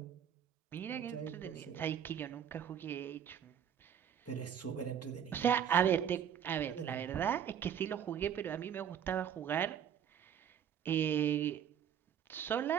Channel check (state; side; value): quieter; left; 8.9 dB